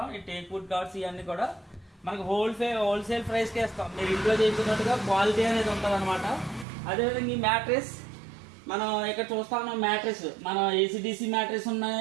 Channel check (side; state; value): left; drops out; at 6.7 s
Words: ఈ టేక్ వుడ్ కార్డ్స్ ఇవన్నీ కూడా మనకి హోల్సేల్ ప్రైస్కే ఇస్తాం. మీరు ఇంట్లో చేయించినట్టుగా క్వాలిటీ అనేది ఉంటుంది అనమాట. అదేవిధంగా ఈ మ్యాట్రెస్ మనం ఇక్కడ చూస్తా ఉన్నాం. మ్యాట్రెస్ మన ఏసీడీసీ మ్యాట్రెస్